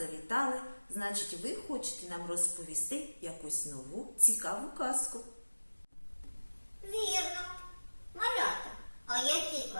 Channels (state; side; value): inverted; both; correlation -1.00